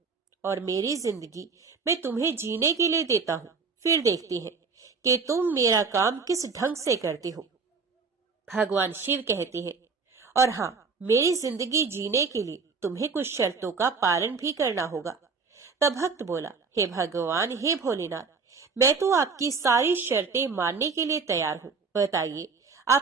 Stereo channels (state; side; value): quieter; left; 4.9 dB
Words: और मेरी जिंदगी मैं तुम्हें जीने के लिए देता हूँ। फिर देखते हैं कि तुम मेरा काम किस ढंग से करते हो। भगवान शिव कहते हैं, और हाँ, मेरी जिंदगी जीने के लिए तुम्हें कुछ शर्तों का पालन भी करना होगा। तब भक्त बोला, हे भगवान, हे भोलेनाथ, मैं तो आपकी सारी शर्तें मानने के लिए तैयार हूँ। बताइए